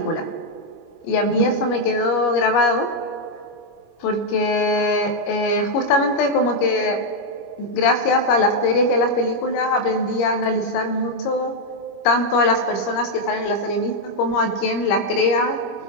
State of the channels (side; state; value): right; late; 25 ms